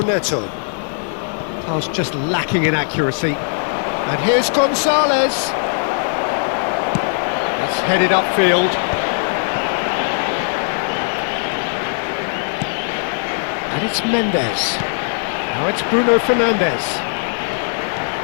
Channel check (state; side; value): silent; right; digital silence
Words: Pass just lacking in accuracy. And here's Gonzalez. That's headed upfield. And it's Mendes. Now it's Bruno Fernandes.